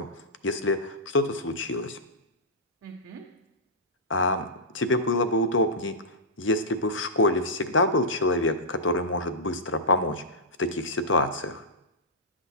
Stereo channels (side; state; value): both; normal; correlation -0.15